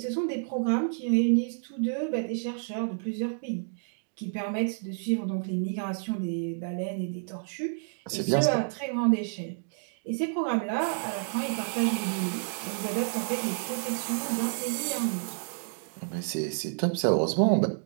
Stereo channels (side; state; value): left; silent; digital silence